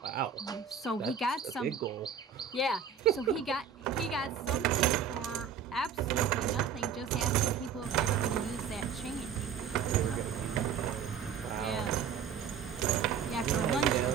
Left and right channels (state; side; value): quieter; left; 7.3 dB